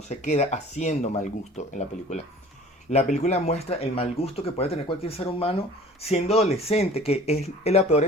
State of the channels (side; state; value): both; normal; correlation 0.47